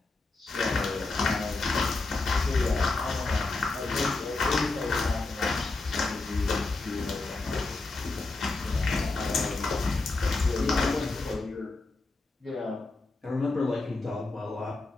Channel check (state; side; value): quieter; right; 3.4 dB